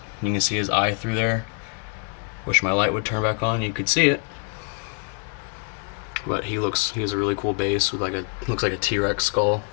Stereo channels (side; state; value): right; quieter; 38.1 dB